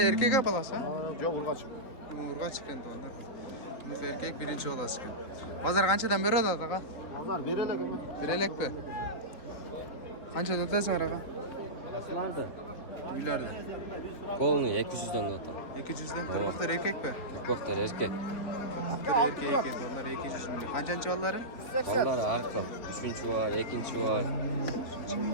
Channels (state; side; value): late; right; 3.9 ms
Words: erkak bolasi? Ha yok urgaç. Urg'ach ekan to'g'anlar. Bunisi erkak birinchi bolasi ekan. Bozor qanchadan beradi aka? Pazar berelek mi? Berelakmi? Qanchadan o'tasizlar aka? Nerede? Uylarda. Полный 200'den atı. 200'dan turpoqlar erkakmi? Koktar erkek. Turpoqlar erkak ekan, onlar 200 ming. Qanchanchi ollari? Onlar arka. Üçüncü var, ikinci var.